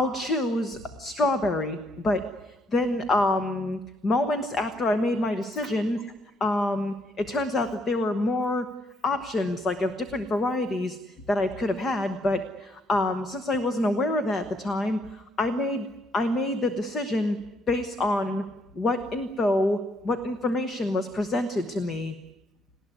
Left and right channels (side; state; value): both; normal; correlation 0.71